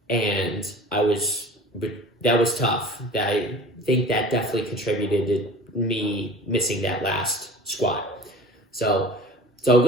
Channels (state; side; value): normal; both; correlation 0.41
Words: and that was tough. I think that definitely contributed to me missing that last squat. So it's all